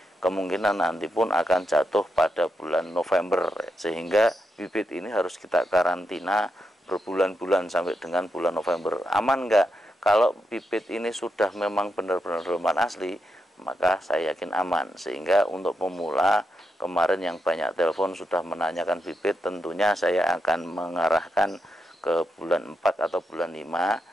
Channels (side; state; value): both; normal; correlation 0.84